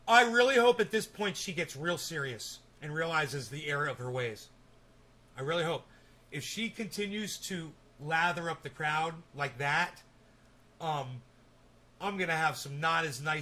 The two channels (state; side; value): identical; both; correlation 1.00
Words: I really hope at this point she gets real serious and realizes the error of her ways. I really hope. If she continues to lather up the crowd like that, I'm going to have some not as